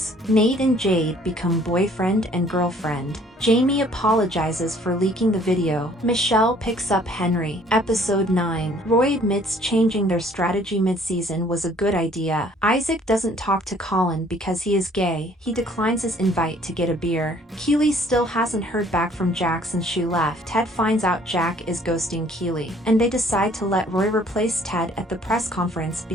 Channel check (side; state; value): both; normal; correlation 0.58